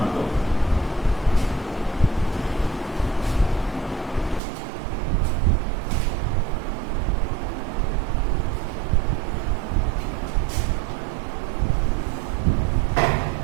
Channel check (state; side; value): drops out; left; at 4.4 s